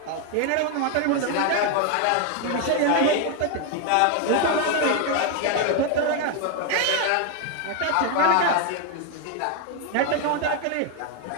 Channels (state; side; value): different; both; correlation 0.01